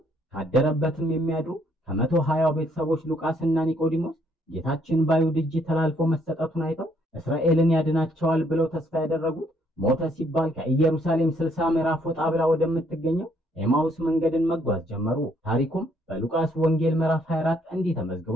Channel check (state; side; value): normal; both; correlation 0.68